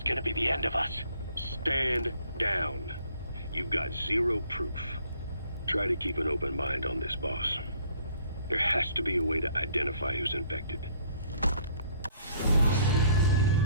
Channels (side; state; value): both; inverted; correlation -0.61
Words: gonna be the end of us. Stand down. You've got zero proof. Try to keep an open mind on this, boss. There has to be a way to identify who's infected.